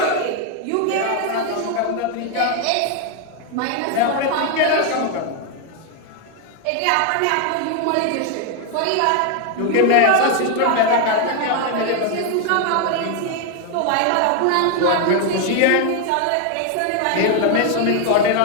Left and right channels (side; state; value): both; different; correlation 0.01